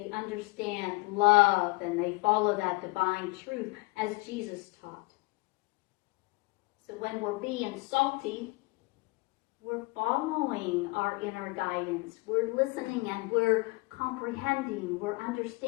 understand love and they follow that divine truth as Jesus taught. So when we're being salty, we're following our inner guidance. We're listening and we're comprehending, we're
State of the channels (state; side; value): quieter; right; 25.3 dB